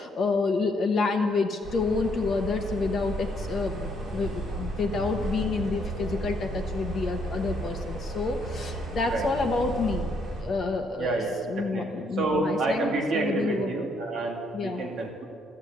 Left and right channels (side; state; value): both; normal; correlation 0.71